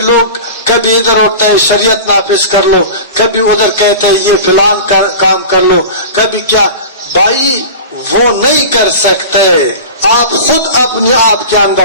لوگ کبھی ادھر ہوتا ہے شریعت نافذ کر لو، کبھی ادھر کہتے ہیں یہ فلان کام کر لو، کبھی کیا. بھائی وہ نہیں کر سکتے، آپ خود اپنے آپ کے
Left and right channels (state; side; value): inverted; both; correlation -0.33